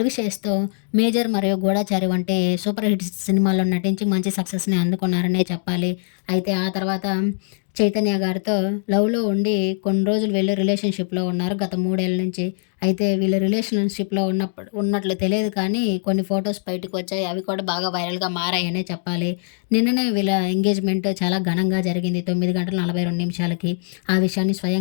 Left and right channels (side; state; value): right; silent; digital silence